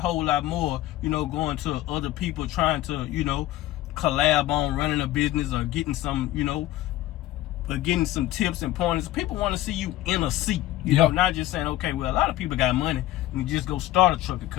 lot more, you know, going to other people trying to, you know, collab on running a business or getting some, you know, getting some tips and pointers. People want to see you in a seat, you know, not just saying, okay, well, a lot of people got money and just go start a trucking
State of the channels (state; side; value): quieter; right; 15.2 dB